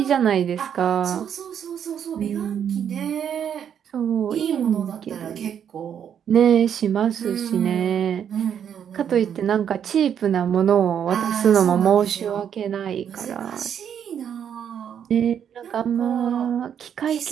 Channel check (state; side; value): quieter; left; 8.6 dB